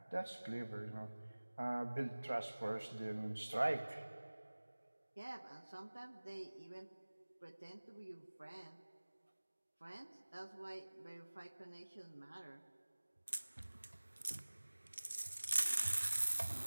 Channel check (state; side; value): inverted; both; correlation -1.00